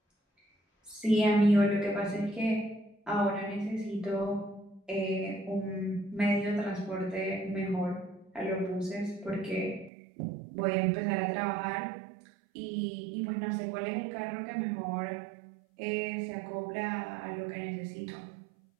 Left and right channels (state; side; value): drops out; left; at 9.9 s